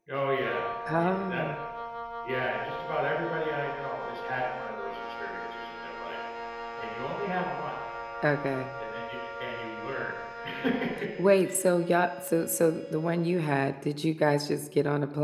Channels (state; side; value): identical; both; correlation 1.00